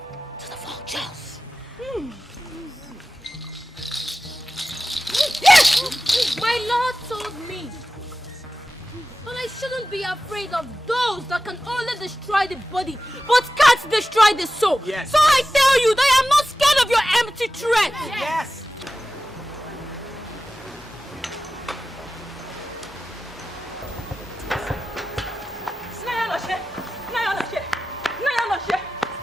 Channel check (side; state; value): both; normal; correlation 0.95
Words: to the vultures. Yes! My Lord told me that I shouldn't be afraid of those that can only destroy the body but can't destroy the soul. Yes. So I tell you that I am not scared of your empty threat. Yes.